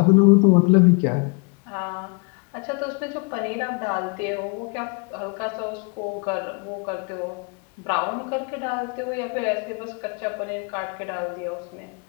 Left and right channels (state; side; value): quieter; right; 34.3 dB